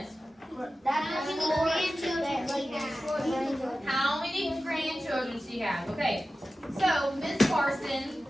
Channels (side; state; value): both; normal; correlation 0.94